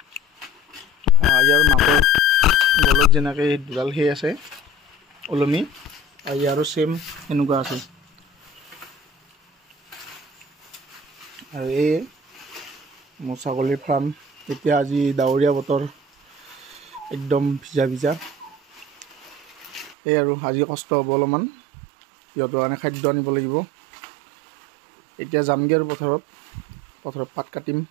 ইয়াৰ মাকৰ গলত যেনেকৈ দুডাল সেই আছে ওলমি ইয়াৰো সেম এনেকুৱা আছে আৰু এই মোৰ ছাগলীৰ ফাৰ্ম এতিয়া আজি ডাৱৰীয়া বতৰ একদম ভিজা এই আৰু আজি কষ্ট হ'ব অলপমান সিহঁতৰ কাৰণে খাদ্য আনিব লাগিব এতিয়া যামগৈ আৰু পথাৰত পাত কাটিম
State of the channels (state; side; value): drops out; left; at 20.0 s